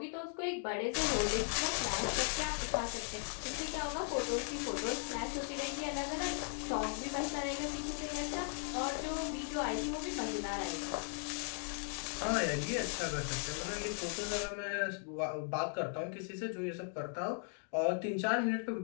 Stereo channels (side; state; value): right; silent; 53 dB below the other